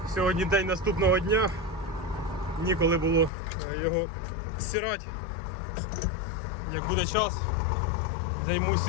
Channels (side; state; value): right; drops out; at 3.3 s